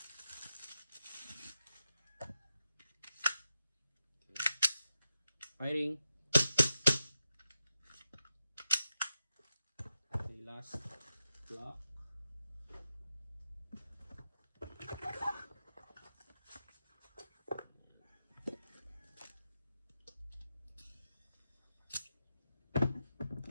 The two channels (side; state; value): both; inverted; correlation -0.88